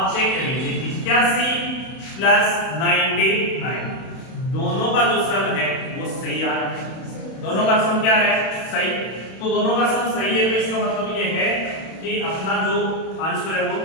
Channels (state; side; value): late; right; 31 ms